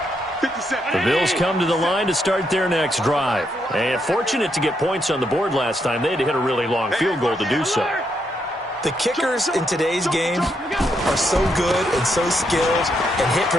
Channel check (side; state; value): both; normal; correlation 0.78